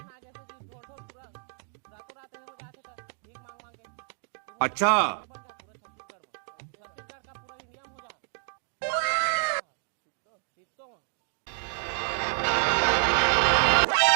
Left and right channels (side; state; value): left; silent; 58 dB below the other